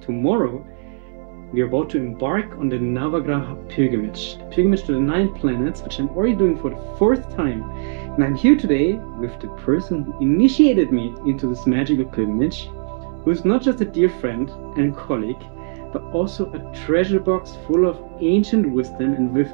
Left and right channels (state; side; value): silent; left; digital silence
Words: we are about to embark on the Navagraha-Pilgerreise, pilgrimage to the 9 planets, which I'm already doing for the 4th time. And I'm here today with the person who initiated me into this magical pilgrimage, who is not just a dear friend and colleague, but also a treasure box full of ancient wisdom and